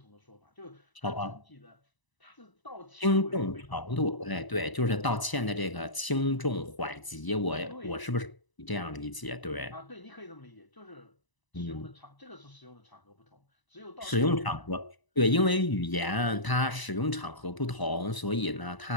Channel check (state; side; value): late; right; 1.0 ms